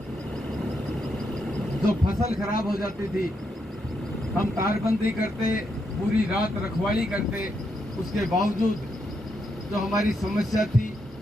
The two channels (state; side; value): normal; both; correlation 0.80